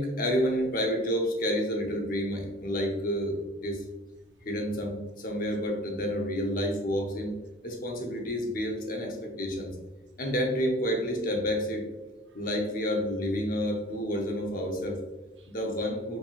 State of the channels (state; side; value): normal; both; correlation 0.45